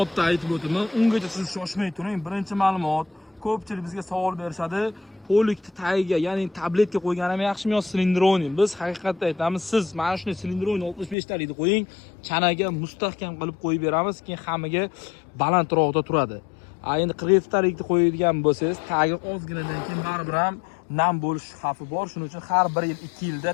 aytib o'taman. Ungacha siz shoshmay turing. Birinchi ma'lumot, ko'pchilik bizga savol berishadi. Polikni tagiga, ya'ni tabletga qo'yganimi yaxshimi yo silindroni? Biz haqiqatda aytamiz, siz mana shuni silindroni 65 talikni qo'ying, chanaga mustahkam qilib qo'yib beramiz, keyin hammaga balandroqda turadi. Endi 47 talikni qo'yadigan bo'lsangiz, tagi ozginadan keyin baribir ham nam bo'lish xavfi bor. Shuning uchun har 1 yil 2 yilda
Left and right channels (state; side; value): drops out; right; at 11.2 s